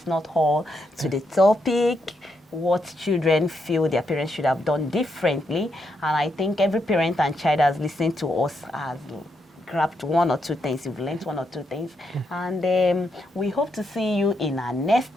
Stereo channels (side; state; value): both; normal; correlation 0.80